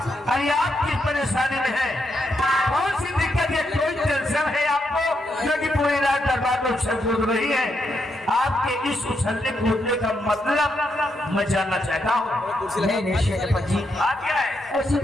अरे आप किस परेशानी में है? कौन सी दिक्कत है? कोई टेंशन है आपको जो कि पूरी रात दरबार में उछल कूद रही है? आपके इस उछलने कूदने का मतलब मैं जानना चाहता हूँ। नहीं शेरपत जी, बात क्या है? ऐसी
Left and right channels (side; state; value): both; normal; correlation 0.80